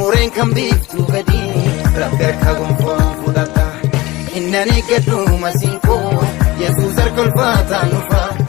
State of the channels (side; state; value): right; quieter; 20.1 dB